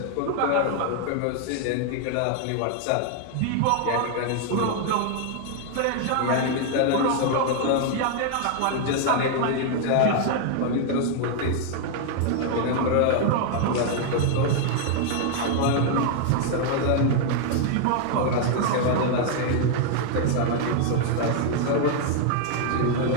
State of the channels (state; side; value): different; both; correlation 0.00